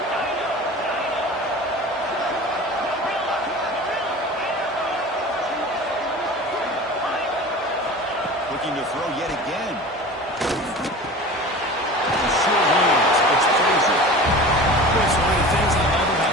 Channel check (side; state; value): both; normal; correlation 0.36